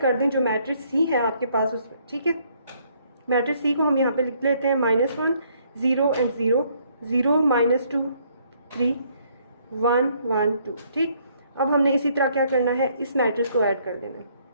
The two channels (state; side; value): inverted; both; correlation -0.67